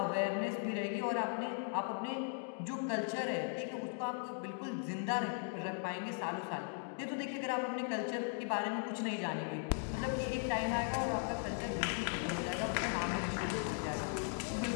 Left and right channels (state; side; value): silent; right; 52 dB below the other